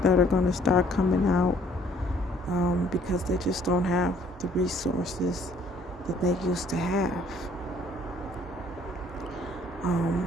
that are going to start coming out because they just don't have the resources that they used to have.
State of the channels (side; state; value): both; normal; correlation 0.60